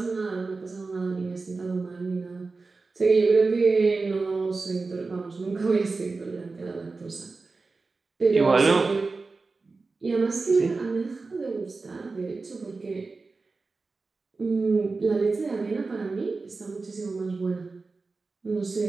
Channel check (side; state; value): left; quieter; 3.9 dB